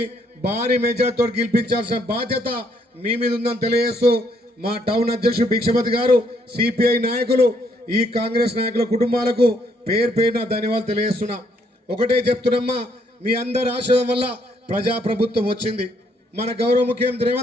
భారీ మెజార్టీతో గెలిపించాల్సిన బాధ్యత మీ మీద ఉందని తెలియజేస్తూ, మా టౌన్ అధ్యక్షుడు భిక్షపతి గారు, సిపిఐ నాయకులు, ఈ కాంగ్రెస్ నాయకుల కుటుంబాలకు పేరు పేరున ధన్యవాదాలు తెలియజేస్తున్నా. ఒకటే చెప్తున్నమ్మా, మీ అందరి ఆశీర్వాదం వల్ల ప్రజాప్రభుత్వం వచ్చింది. మన గౌరవ ముఖ్యమంత్రి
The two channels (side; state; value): both; normal; correlation 0.70